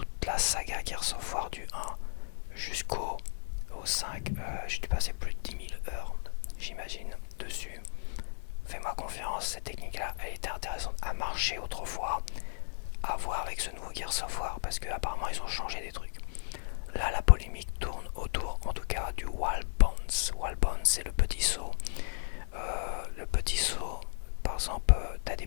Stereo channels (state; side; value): silent; right; digital silence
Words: la saga Gears of War du 1 jusqu'au 5, j'ai dû passer plus de 10 000 heures, j'imagine, dessus. Fais-moi confiance, cette technique-là, elle était intéressante à marcher autrefois, à voir avec ce nouveau Gears of War, parce qu'apparemment ils ont changé des trucs. Là, la polémique tourne autour, en tout cas, du Wall Bounce. Wall Bounce, c'est le petit saut. Le petit saut, par exemple, t'as des